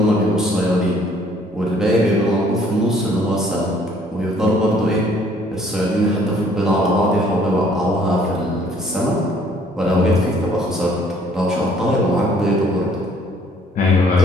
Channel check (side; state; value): both; normal; correlation 0.60